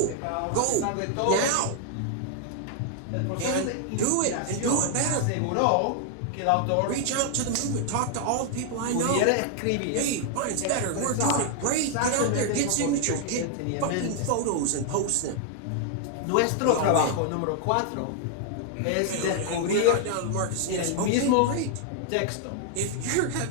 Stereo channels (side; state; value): both; different; correlation 0.00